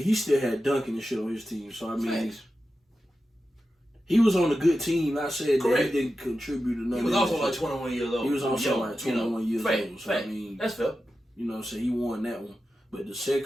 still had Duncan and shit on his team. So, I mean, he was on a good team. Not saying that he didn't contribute to nothing. He was also like 21 years old. He was also like 21 years old. So, I mean, that's fair. You know what I'm saying? He won that one. But the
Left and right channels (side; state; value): both; normal; correlation 0.92